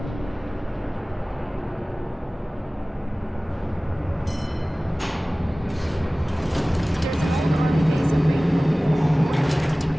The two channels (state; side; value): normal; both; correlation 0.98